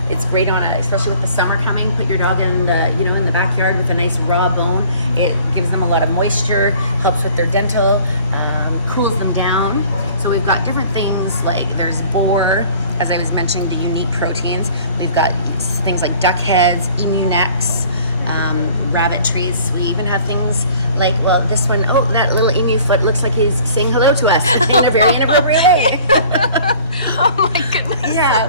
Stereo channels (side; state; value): both; inverted; correlation -0.51